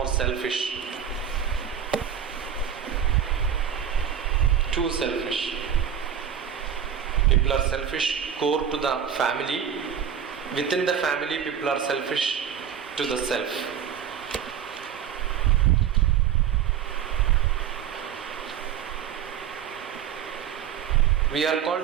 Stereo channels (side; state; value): left; quieter; 8.7 dB